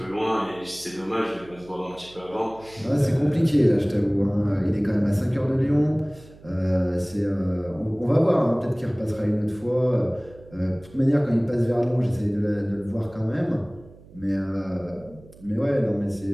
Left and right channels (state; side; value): noise; right; hum, 22 dB below the sound